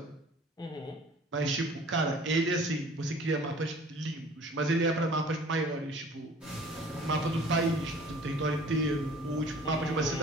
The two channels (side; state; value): both; normal; correlation 0.49